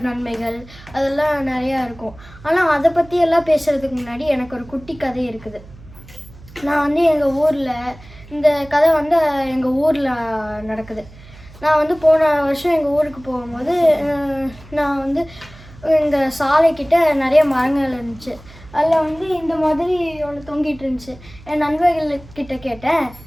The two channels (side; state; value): right; noise; hum, 20 dB below the sound